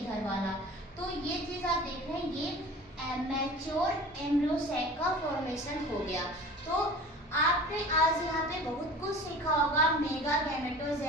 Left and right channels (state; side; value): normal; both; correlation 0.40